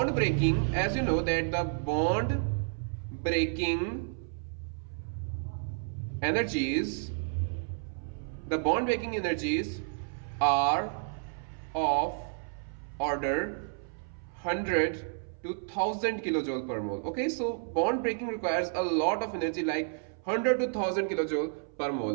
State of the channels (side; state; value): left; silent; 57 dB below the other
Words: breaking, as you know that the bond breaking energies are of order 100 to 1000 kilojoule per mole. Okay, so bond breaking requires a lot of energy, like 100 to 1000 kilojoule per